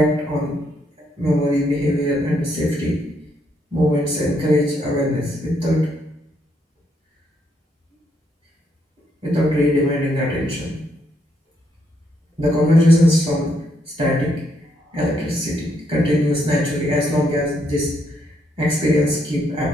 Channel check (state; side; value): normal; both; correlation 0.75